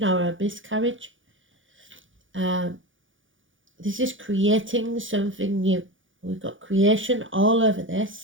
or a miscarriage. This is creating something new. We've got creation all over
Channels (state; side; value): late; left; 0.57 ms